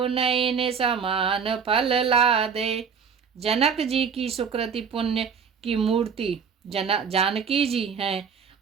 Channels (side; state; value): left; quieter; 6.4 dB